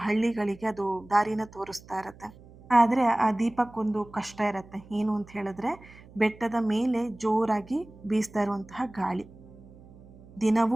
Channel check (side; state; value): right; noise; hum, 22 dB below the sound